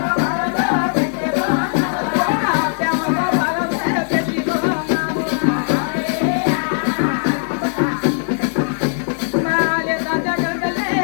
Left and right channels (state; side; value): silent; right; digital silence